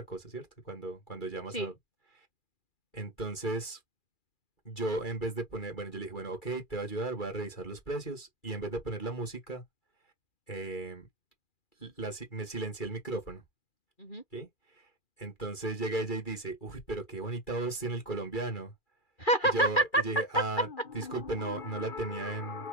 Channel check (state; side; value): late; right; 2.3 ms